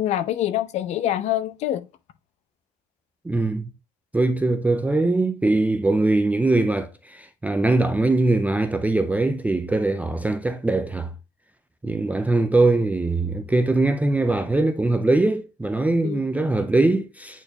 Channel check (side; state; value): both; normal; correlation 0.87